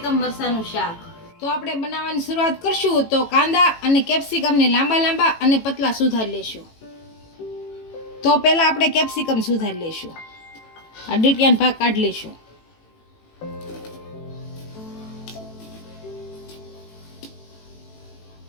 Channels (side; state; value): right; late; 18 ms